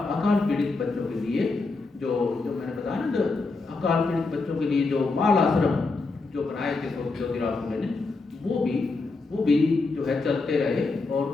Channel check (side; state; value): right; quieter; 3.8 dB